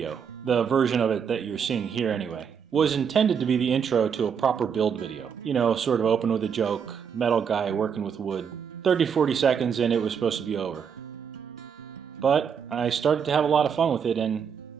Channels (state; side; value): quieter; left; 7.1 dB